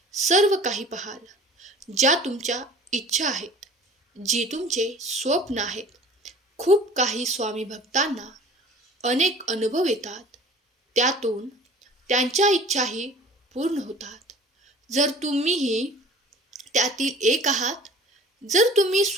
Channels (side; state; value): both; normal; correlation 0.46